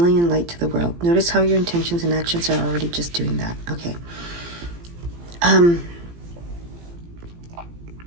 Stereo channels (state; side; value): late; left; 17 ms